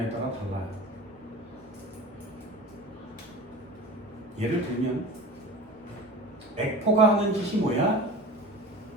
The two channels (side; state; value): both; normal; correlation 0.36